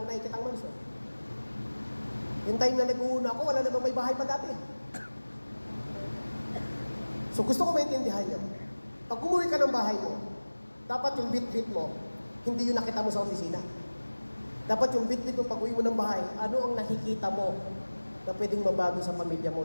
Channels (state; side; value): inverted; both; correlation -1.00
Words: nakikitang mansion. Yung time na nag-uuna ako, wala namang may bahay pa dati. So gusto ko maintindihan nyo. Pag umuwi ka ng bahay mo, dapat yung bit-bit mo, hindi yung nakita mo sa opisina. Dapat yung bit-bit mo pag uwi mo ng bahay, ano ang nakikita mo na pwedeng mabago sa pamilya mo